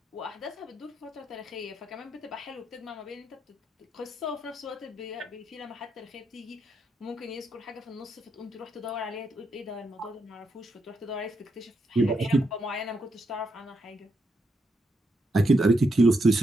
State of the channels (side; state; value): both; normal; correlation 0.80